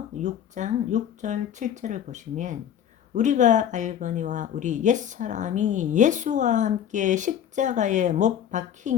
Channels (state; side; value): quieter; right; 9.6 dB